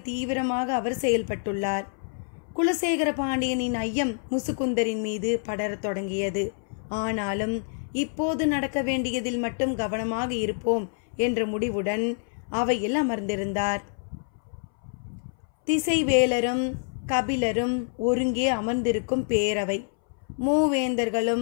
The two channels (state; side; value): silent; right; 60 dB below the other